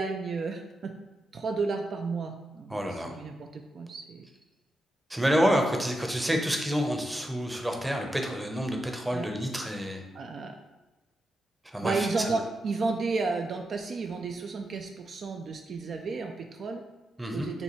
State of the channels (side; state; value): both; normal; correlation 0.87